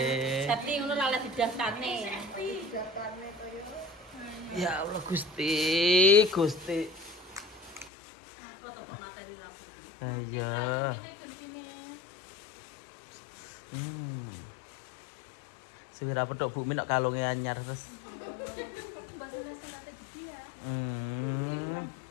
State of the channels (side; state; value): right; drops out; at 7.9 s